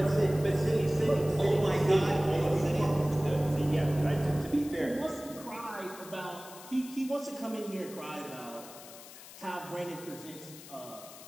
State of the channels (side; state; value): left; noise; hiss, 17 dB below the sound